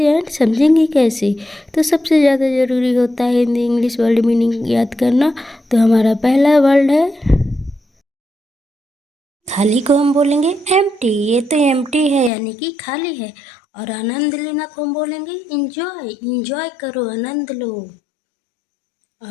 एंड समझेंगे कैसे। तो सबसे ज़्यादा ज़रूरी होता है हिंदी इंग्लिश वर्ड मीनिंग याद करना। तो हमारा पहला वर्ड है खाली को हम बोलेंगे एम्प्टी। ये तो एम्प्टी है यानी कि खाली है। और आनंद लेना को हम बोलेंगे इंजॉय। इंजॉय करो, आनंद लो।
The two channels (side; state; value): right; drops out; at 12.3 s